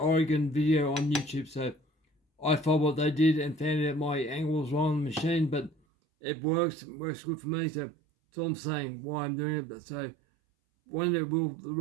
video on YouTube. So I followed what they did and found out my angle was wrong on the machine, but it works good for me. So that's all I'm saying, why I'm doing it. But so one day will the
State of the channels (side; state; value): left; drops out; at 5.8 s